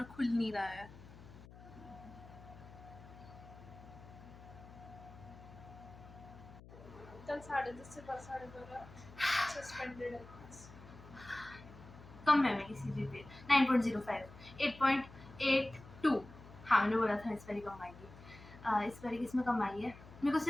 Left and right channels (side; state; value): left; noise; hum, 18 dB below the sound